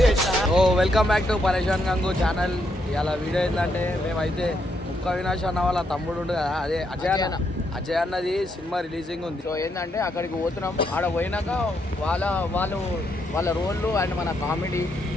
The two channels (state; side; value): normal; both; correlation 0.77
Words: వెల్కమ్ బ్యాక్ టు పరేషాన్ గంగు ఛానల్. ఇలా వీడియో ఏంటంటే మేమైతే ముక్క అవినాష్ అన్న వాళ్ళ తమ్ముడు ఉండు కదా, అదే అజయ్ అన్నది సినిమా రిలీజింగ్ ఉంది. సో ఏంటంటే అక్కడికి పోతున్నాం. ఆడ పోయినాక వాళ్ళ రోళ్ళు అండ్ మన కామెడీ